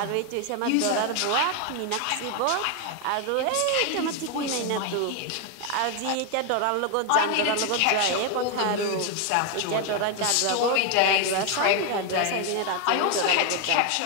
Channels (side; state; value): both; different; correlation 0.01